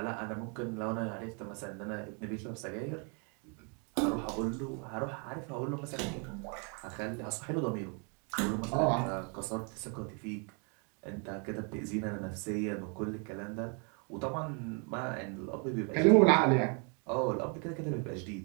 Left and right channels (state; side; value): quieter; left; 36.9 dB